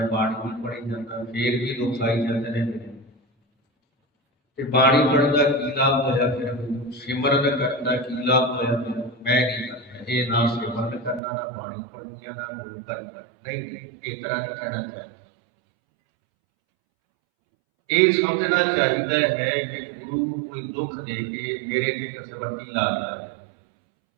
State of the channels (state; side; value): drops out; left; at 11.2 s